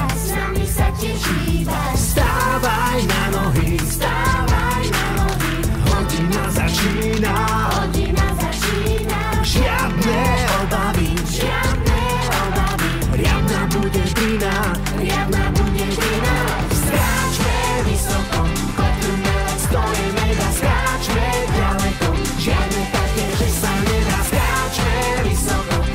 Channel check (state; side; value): identical; both; correlation 1.00